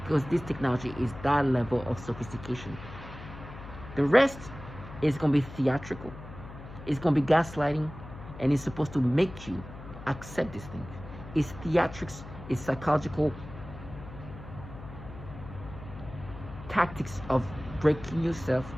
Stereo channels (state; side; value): noise; left; hum, 14 dB below the sound